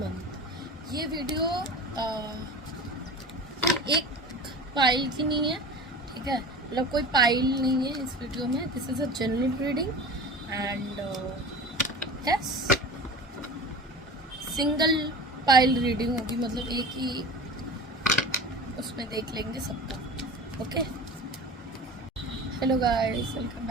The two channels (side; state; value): both; normal; correlation 0.35